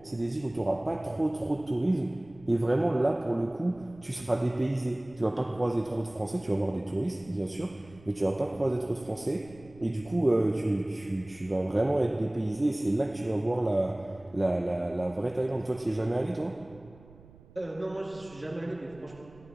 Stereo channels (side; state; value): right; noise; rumble, 23 dB below the sound